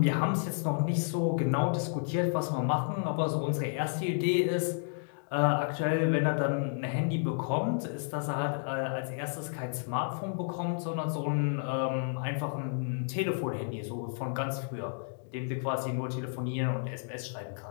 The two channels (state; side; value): silent; right; digital silence